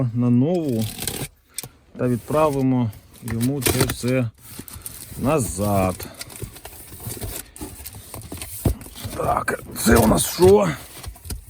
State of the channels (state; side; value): identical; both; correlation 1.00